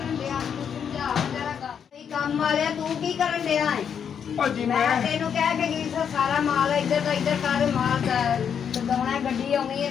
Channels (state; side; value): quieter; right; 7.7 dB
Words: काम वाले तू की करन दिया है भाजी मैं तेनू कह के गई सा सारा माल इधर का इधर कर माल लदाउना है गड्डी आउनी है